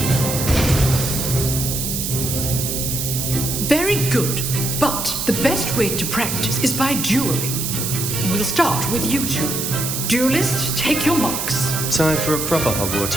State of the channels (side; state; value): right; noise; hiss, 2 dB below the sound